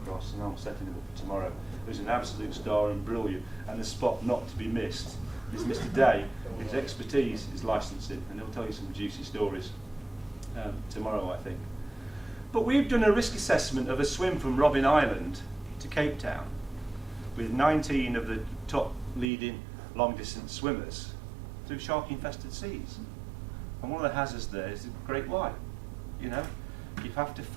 and I'm setting him up for tomorrow, who's an absolute star and brilliant, and a spot not to be missed, is Mr. Day. His expertise is licensing, and he'll tell you some juicy stories tomorrow, I think. But we've done a risk assessment of a swim from Robben Island to Cape Town with 19 of the top leading long-distance swimmers through shark-infested seas. And one of the hazards there is the great white. You know, you have to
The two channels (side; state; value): left; drops out; at 19.3 s